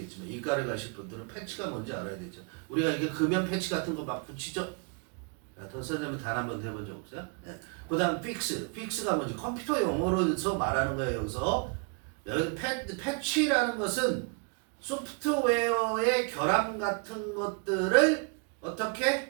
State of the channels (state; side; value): quieter; left; 34.0 dB